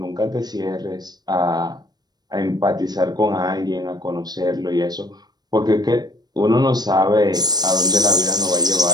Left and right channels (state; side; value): late; left; 0.19 ms